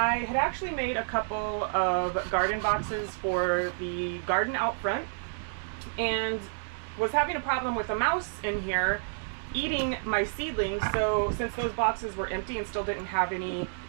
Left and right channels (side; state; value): left; silent; digital silence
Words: had actually made a couple of garden boxes for the garden out front and was having a problem with a mouse in here eating my seedlings. So since those boxes were empty and still didn't have any